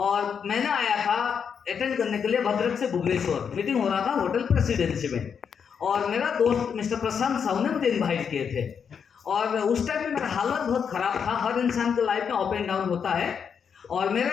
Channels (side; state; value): right; quieter; 6.9 dB